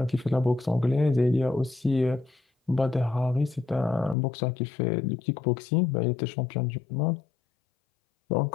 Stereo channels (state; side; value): drops out; right; at 4.2 s